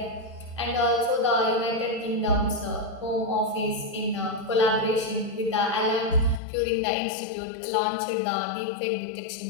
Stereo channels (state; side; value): drops out; right; at 6.4 s